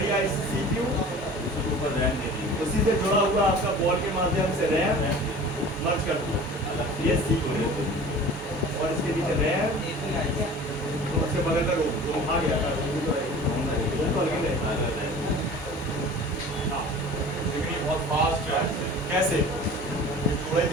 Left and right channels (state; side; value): normal; both; correlation 0.41